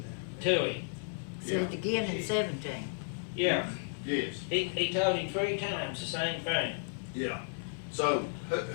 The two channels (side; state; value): right; silent; digital silence